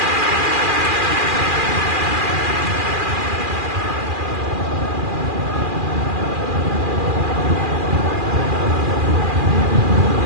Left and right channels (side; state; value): left; late; 2.4 ms